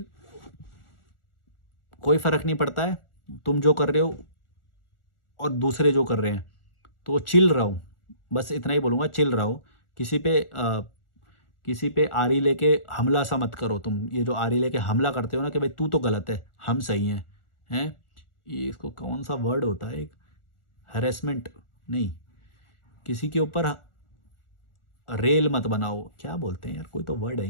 कोई फ़र्क नहीं पड़ता है तुम जो कर रहे हो और दूसरे जो कर रहे हैं। तो चिल रहो, बस इतना ही बोलूँगा, चिल रहो। किसी पे किसी पे आरी लेके हमला सा मत करो तुम। ये जो आरी लेके हमला करते हो ना कि भाई तू तो गलत है, हम सही हैं, ये इसको कौन सा वर्ड होता है, एक हरेसमेंट नहीं, किसी के ऊपर रेल मत बनाओ, क्या बोलते हैं यार, कोई तो वर्ड है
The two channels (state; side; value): late; right; 1.4 ms